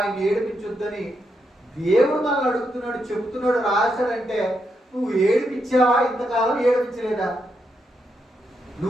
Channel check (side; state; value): both; normal; correlation 0.81